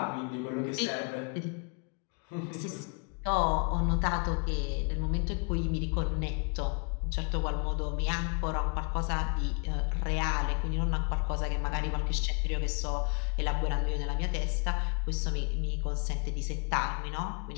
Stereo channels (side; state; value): right; quieter; 35.6 dB